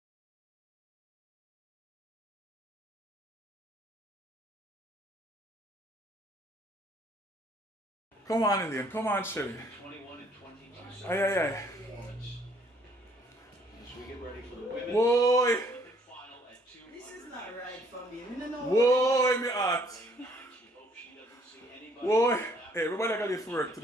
Come on, Elaine. Come on, SHELLY. Aye. Whoa! This is not right for me. No. Whoa, me heart. Whoa. Hey, everybody got this for work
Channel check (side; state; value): both; normal; correlation 0.63